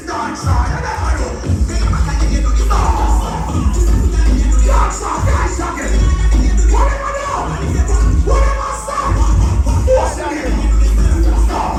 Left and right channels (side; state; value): both; identical; correlation 1.00